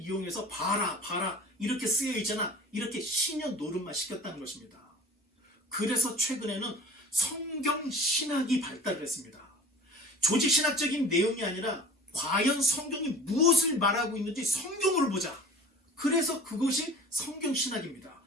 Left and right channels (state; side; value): normal; both; correlation 0.43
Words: 봐라 이렇게 쓰여 있잖아, 이렇게 신년 노름만 시켰다는 것입니다. 그래서 최근에는 성경 신학이 발달을 했습니다. 조직 신학적인 내용이 아니라 과연 성경이 무엇을 말하고 있는지 성경으로 보자. 그래서 그것이 성경 신학입니다.